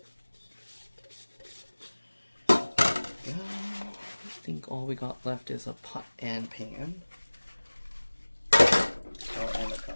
I think all we got left is a pot and pan. Oh, and a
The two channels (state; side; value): inverted; both; correlation -1.00